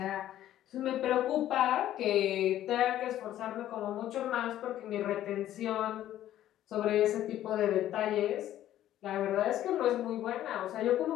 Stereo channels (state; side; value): quieter; right; 12.6 dB